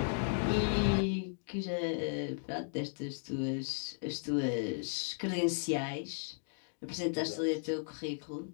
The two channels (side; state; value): right; silent; digital silence